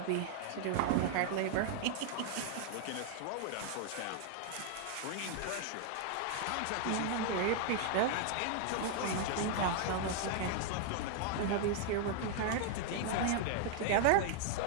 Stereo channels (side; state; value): both; different; correlation 0.00